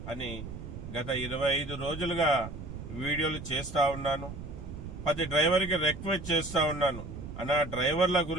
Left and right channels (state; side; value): noise; right; rumble, 10 dB below the sound